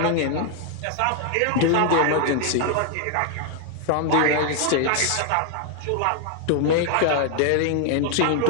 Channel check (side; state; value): both; different; correlation 0.00